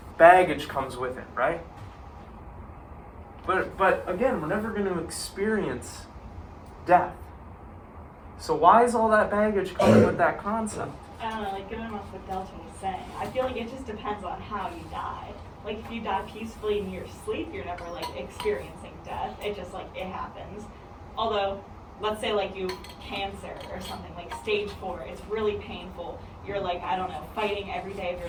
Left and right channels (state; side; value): identical; both; correlation 1.00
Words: baggage comes with it, right? But again, we're never going to experience death. So why is all that baggage coming with that concept? I don't know, going off what Delton was saying, I feel like it just depends on how you die. If you die peacefully in your sleep, you're never experiencing death. It just it happens. Although, let's say you have cancer or something, stage 4, it's really painful. You're I don't know, fighting every day of your